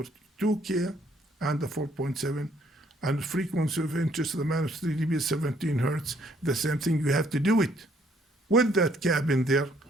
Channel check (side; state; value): both; normal; correlation 0.66